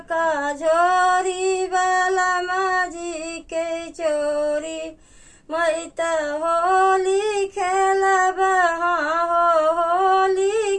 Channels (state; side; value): identical; both; correlation 1.00